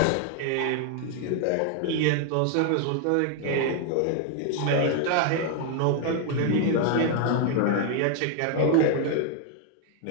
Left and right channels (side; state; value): both; different; correlation 0.00